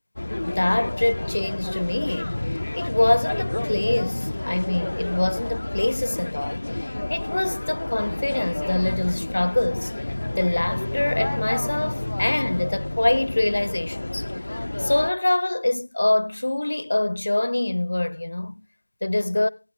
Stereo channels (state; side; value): inverted; both; correlation -1.00